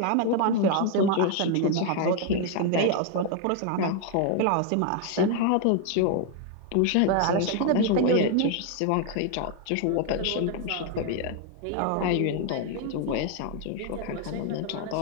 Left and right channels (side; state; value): both; different; correlation 0.00